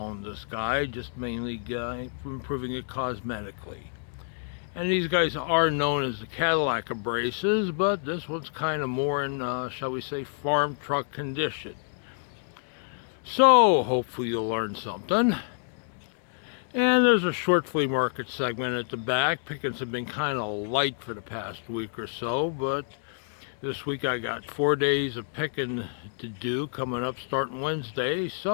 on this guy, just mainly improving it cosmetically. And these guys are known as the Cadillac of braces, but this one's kind of more in, shall we say, farm truck condition. So, hopefully you'll learn something. And there's a short flea market segment at the back. Pickings have been kind of light for the past week or so, but this week I got 4 days of picking to do coming up starting Wednesday,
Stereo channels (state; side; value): silent; right; digital silence